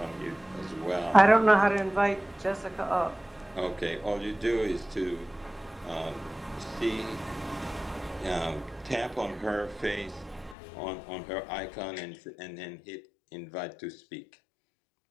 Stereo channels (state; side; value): drops out; right; at 10.6 s